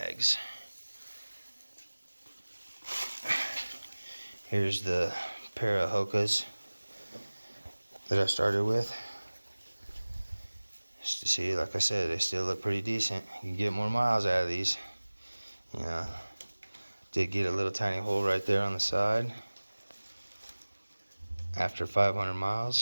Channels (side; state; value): both; inverted; correlation -1.00